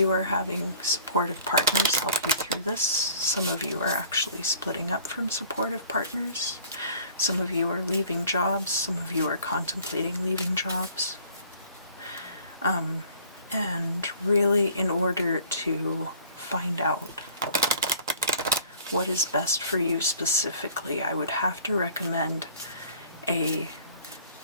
are having supportive partners help you through this. Some of you are actually splitting up from supportive partners. Some of you are leaving jobs. Some of you are contemplating leaving jobs. And really, in order to find out what is best for you specifically, I would have to recommend a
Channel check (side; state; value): both; inverted; correlation -0.51